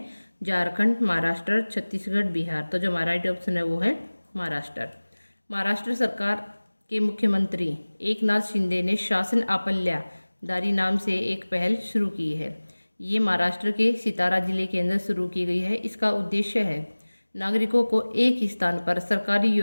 झारखंड, महाराष्ट्र, छत्तीसगढ़, बिहार। तो जो हमारा राइट ऑप्शन है वो है महाराष्ट्र। महाराष्ट्र सरकार के मुख्यमंत्री एकनाथ शिंदे ने शासन अपल्यादारी नाम से एक पहल शुरू की है। ये महाराष्ट्र के सितारा जिले के अंदर शुरू की गई है। इसका उद्देश्य है नागरिकों को एक ही स्थान पर सरकारी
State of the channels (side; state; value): both; inverted; correlation -1.00